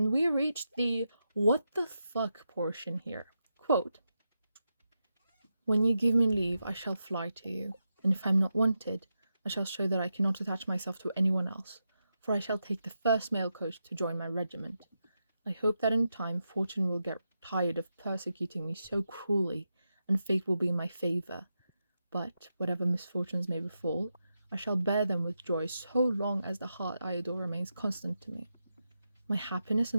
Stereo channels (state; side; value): inverted; both; correlation -0.87